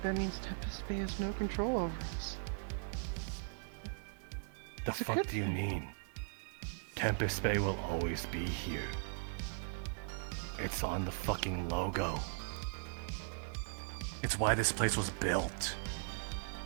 Tempest Bay has no control over us. The It's a fuck good do you thing. mean? Tempest Bay will always be here. It's on the fucking logo. It's why this place was built.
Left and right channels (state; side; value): silent; left; digital silence